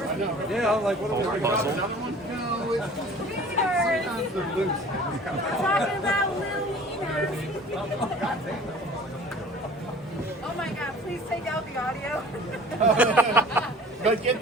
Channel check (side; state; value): both; normal; correlation 0.46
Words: Yeah, I'm like, what are we Puzzle. No, it's Talking about Lil Oh my God, please take out the audio. But get